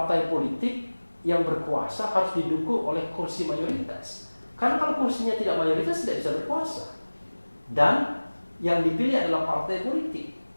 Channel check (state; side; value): inverted; both; correlation -1.00